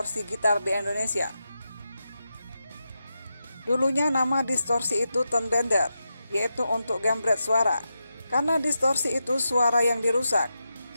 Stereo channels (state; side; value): inverted; both; correlation -0.88